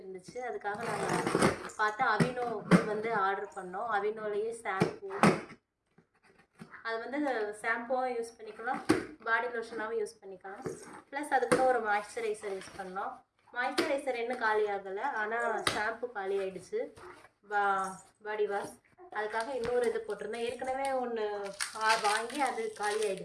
அதுக்காக நாங்கள் பார்த்து அவினோ வந்து ஆர்டர் பண்ணோம். அவினோலேயே ஷாம்பூ, அது வந்து ஷாம்புவும் யூஸ் பண்ணிக்கலாம், பாடி லோஷனாகவும் யூஸ் பண்ணிக்கலாம். ப்ளஸ் அதுக்குள்ள ஒரு மாய்ஸ்சரைசர் யூஸ் பண்ணோம். மாய்ஸ்சரைசர் இன்னும் காலி ஆகலை, ஆனால் ஷாம்பு காலி ஆகிடுச்சு. பாடி வாஷ் அதுக்காக இன்னொரு இது போட்டிருந்தோம். ஏற்கனவே ஒன்று வாங்கி அது காலி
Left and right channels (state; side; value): identical; both; correlation 1.00